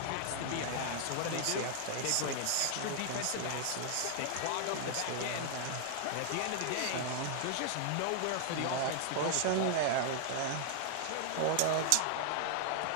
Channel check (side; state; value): both; different; correlation 0.00